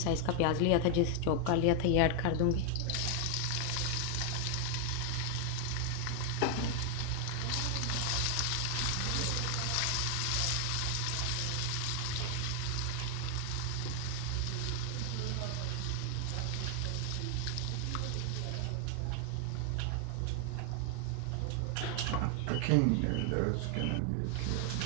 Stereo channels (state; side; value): different; both; correlation 0.00